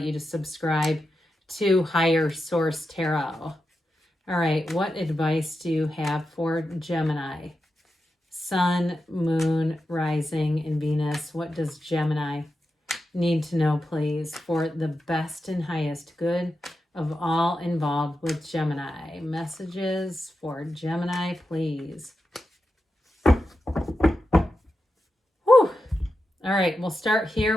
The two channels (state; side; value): normal; both; correlation 0.90